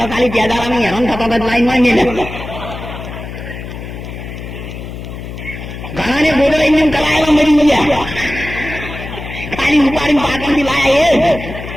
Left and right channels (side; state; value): left; noise; hum, 10 dB below the sound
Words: ખાલી પેદારાની હેરાન થતા લાઈનમાં નહીં. ઘણા ને ગોદડા એમને કરાયેલા મરી ગયા. ખાલી ઉપાડીને પાટણથી લાયા